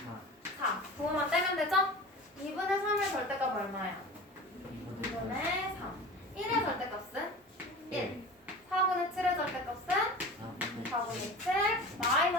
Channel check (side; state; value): both; normal; correlation 0.35